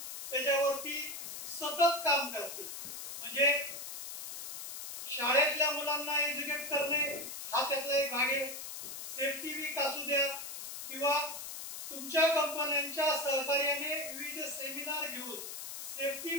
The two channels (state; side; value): noise; left; hiss, 7 dB below the sound